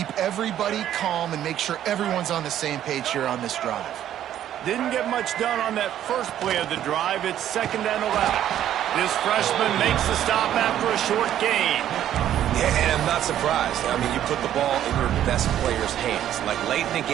everybody calm and make sure everyone's on the same page here on this drive. Didn't get much done on that first play of the drive. It's 2nd and 11. This freshman makes the stop after a short gain. Yeah, and I'm not surprised. I mean, you put the ball in your best player's hands. Like, late in the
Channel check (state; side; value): quieter; left; 11.3 dB